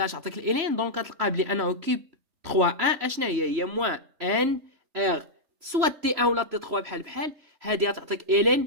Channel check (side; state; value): left; late; 3.0 ms